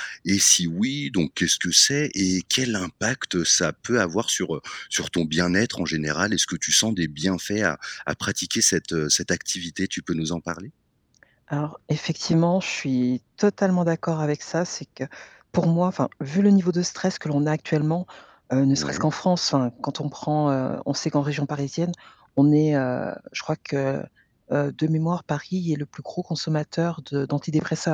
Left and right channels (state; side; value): identical; both; correlation 1.00